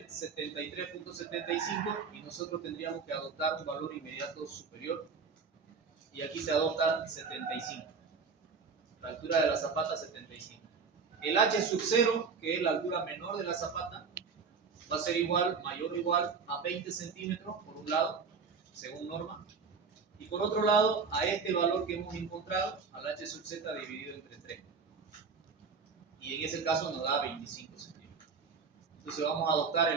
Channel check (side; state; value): left; quieter; 5.3 dB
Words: 73.75 y nosotros tendríamos que adoptar un valor inmediato superior. Y aquí se adopta 75. La altura de la zapata 75. El h sub 0, que es la altura menor de la zapata, va a ser igual, mayor o igual a 20 centímetros por un lado, según norma. Y por otro lado, a este valor que hemos encontrado, al h sub z dividido entre 3. Y en ese caso nos da 25 centímetros. Entonces vamos a adoptar